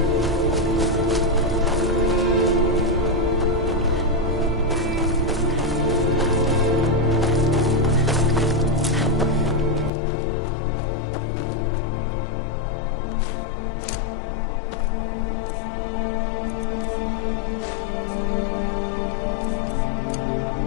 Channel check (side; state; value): right; drops out; at 9.9 s